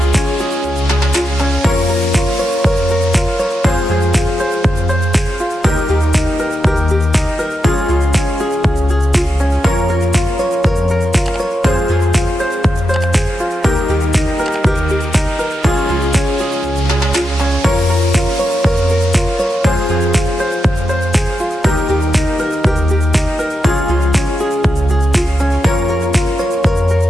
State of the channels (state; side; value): normal; both; correlation 0.86